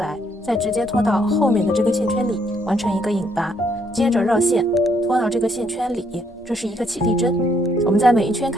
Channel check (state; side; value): normal; both; correlation 0.70